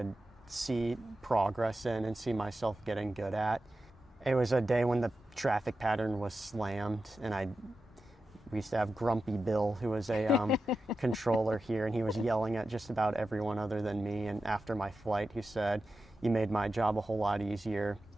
see progress in and see myself getting good at. It was a day when the traffic pattern was slammed, and we used to have Grumpy Bill, who was a controller here, and he was yelling at just about everyone other than me. And after my flight, he said, "You made my job a whole lot easier."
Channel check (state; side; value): normal; both; correlation 0.91